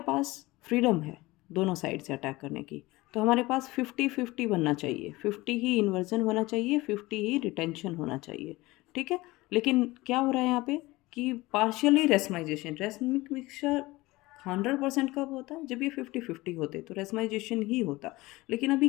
पास फ्रीडम है दोनों साइड से अटैक करने की। तो हमारे पास 50-50 बनना चाहिए, 50 ही इन्वर्जन होना चाहिए, 50 ही रिटेंशन होना चाहिए, ठीक है। लेकिन क्या हो रहा है यहाँ पे कि पार्शियली रेसमाइजेशन, रेसमिक मिक्सचर 100% कब होता है, जब ये 50-50 होते, तो रेसमाइजेशन ही होता। लेकिन अभी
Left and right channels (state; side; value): quieter; right; 20.4 dB